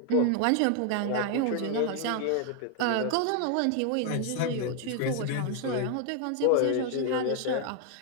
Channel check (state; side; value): different; both; correlation 0.00